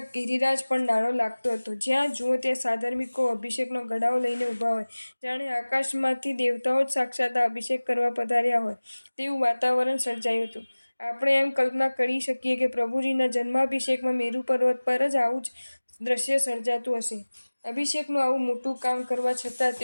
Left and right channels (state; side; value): inverted; both; correlation -1.00